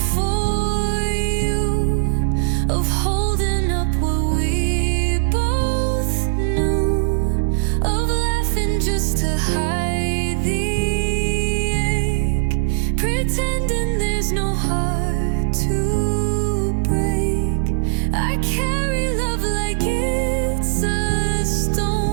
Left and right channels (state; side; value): silent; left; 61 dB below the other